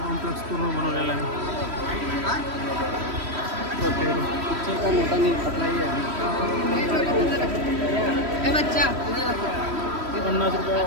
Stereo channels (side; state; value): left; late; 3.1 ms